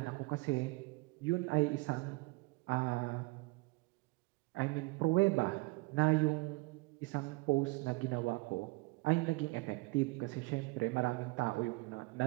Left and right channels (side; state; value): left; quieter; 25.1 dB